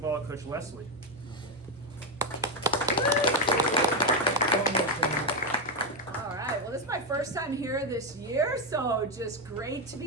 Coach Leslie. All right, well, this is my first time here this year, so just great to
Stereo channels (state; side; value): normal; both; correlation 0.06